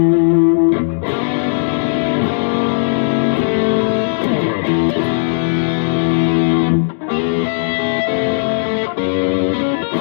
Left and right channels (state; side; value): silent; right; digital silence